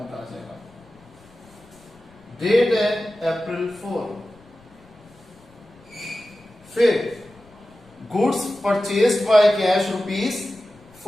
आ जाएगा। डेट है अप्रैल 4। फिर goods purchased by cash rupees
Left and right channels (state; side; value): noise; left; rumble, 27 dB below the sound